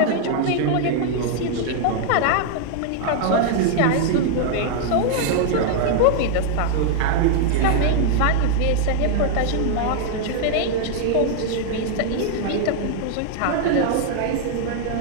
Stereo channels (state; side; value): different; both; correlation 0.00